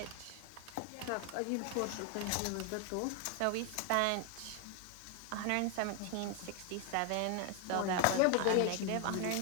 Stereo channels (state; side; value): different; both; correlation 0.00